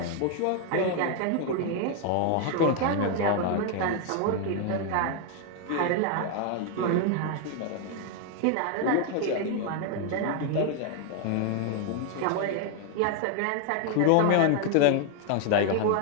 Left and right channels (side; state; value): both; different; correlation 0.01